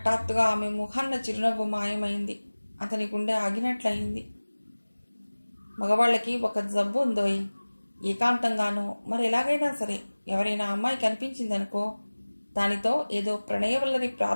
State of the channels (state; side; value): inverted; both; correlation -1.00